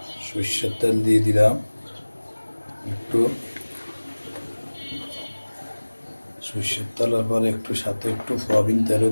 সরষের তেল দিয়ে দিলাম, একটু সরষের তেলের পরে একটু সাথে একটু সয়াবিন তেলও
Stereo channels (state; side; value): inverted; both; correlation -1.00